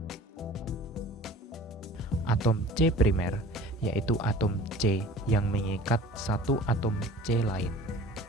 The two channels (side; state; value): both; normal; correlation 0.44